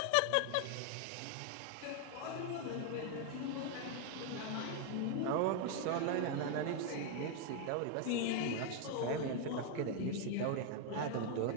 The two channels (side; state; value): both; different; correlation 0.00